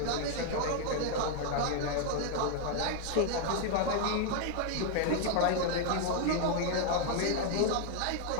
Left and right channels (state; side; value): different; both; correlation 0.00